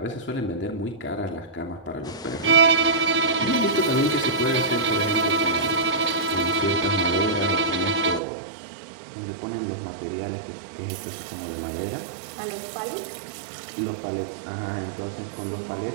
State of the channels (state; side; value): drops out; left; at 8.2 s